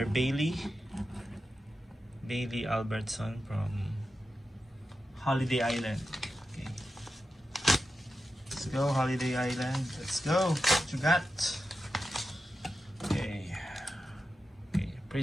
Bailey Albertson from Holiday Island. Okay. Let's go, Holiday Island. Let's go. What you got? Okay. Okay,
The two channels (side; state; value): both; normal; correlation 0.91